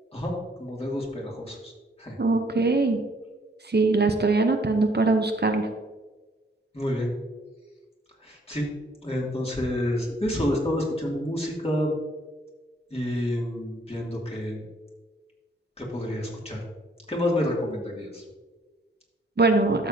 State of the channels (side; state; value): both; normal; correlation 0.64